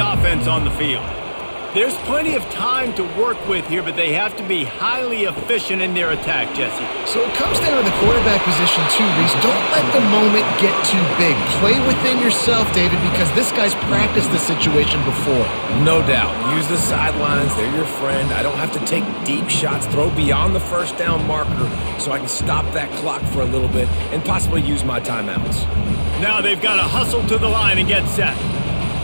on the field. There's plenty of time to work with here, but they have to be highly efficient in their attack, Jesse. So it comes down to the quarterback position too, Reese. Don't let the moment get too big. Play within yourself, David, because this guy's practiced the situation before. No doubt. Use the sidelines. They're your friend. I don't have to take deep shots. Throw beyond the 1st down marker so I can stop that clock for a little bit and possibly use my timeouts. Now they've got to hustle to the line and get set.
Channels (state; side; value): inverted; both; correlation -1.00